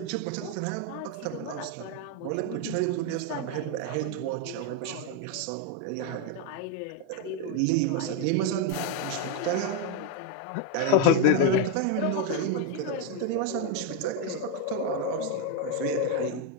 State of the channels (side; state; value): both; different; correlation 0.01